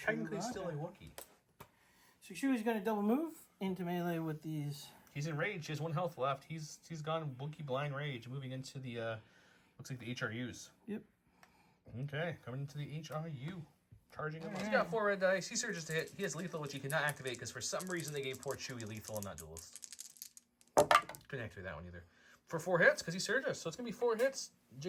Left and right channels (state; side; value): identical; both; correlation 1.00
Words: still a Wookiee. So Chewie's going to double move into melee with these. He's in rage. He has 1 health left. He's gone Wookiee blind rage, moving into the looks like the HRUs. Yep. Okay, coming into the HRU. Charging him. He's got 4 red dice. He surges to hit. He has lethal, which he cannot activate because for some reason they gave poor Chewie lethal and not duelist. Couldn't activate that one either. For 4 hits, because he surges. So it's going to be 4 hits.